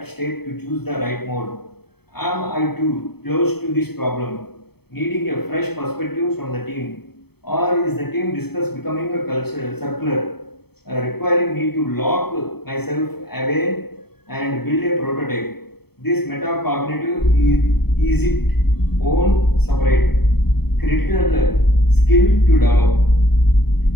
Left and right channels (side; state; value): right; late; 0.97 ms